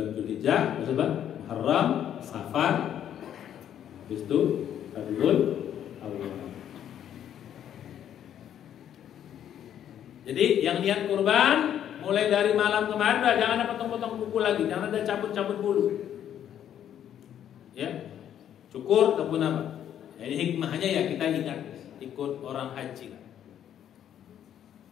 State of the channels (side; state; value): right; quieter; 10.1 dB